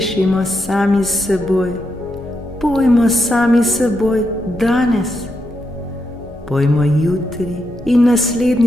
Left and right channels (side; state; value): both; normal; correlation 0.82